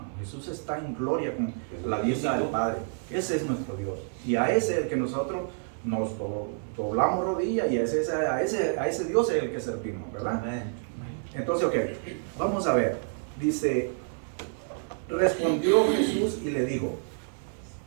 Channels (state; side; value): silent; left; digital silence